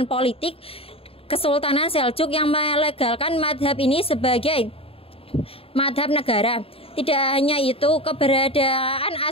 politik Kesultanan Seljuk yang melegalkan madhab ini sebagai madhab negara. Tidak hanya itu, keberadaan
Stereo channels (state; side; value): late; right; 0.27 ms